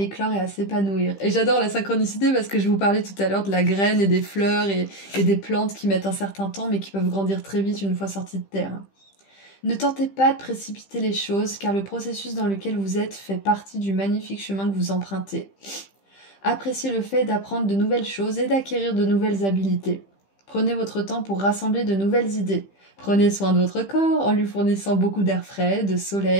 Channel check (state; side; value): late; right; 15 ms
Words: et à s'épanouir. Et j'adore la synchronicité parce que je vous parlais tout à l'heure de la graine et des fleurs et des plantes qui mettent un certain temps mais qui peuvent grandir très vite une fois sorties de terre. Ne tentez pas de précipiter les choses car le processus dans lequel vous êtes fait partie du magnifique chemin que vous empruntez. Appréciez le fait d'apprendre de nouvelles choses et d'acquérir de nouvelles habiletés. Prenez votre temps pour rassembler de nouvelles idées. Prenez soin de votre corps en lui fournissant beaucoup d'air frais, de